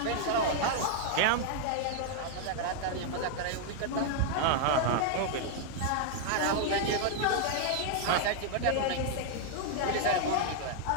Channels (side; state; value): both; different; correlation 0.00